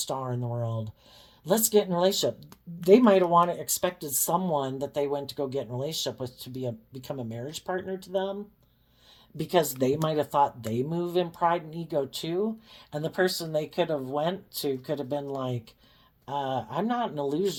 in the world. Let's get in a relationship. They might have expected someone that they went to go get in a relationship with to become a marriage partner to them, because they might have thought they move in pride and ego too. And the person they could have went to could have been like, I'm not in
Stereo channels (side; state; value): both; identical; correlation 1.00